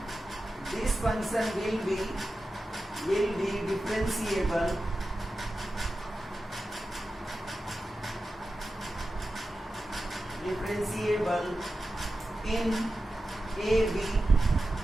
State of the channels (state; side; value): normal; both; correlation 0.92